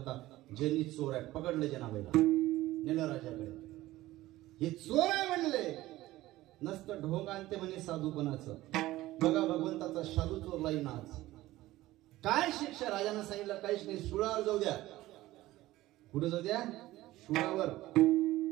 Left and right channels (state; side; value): quieter; left; 16.7 dB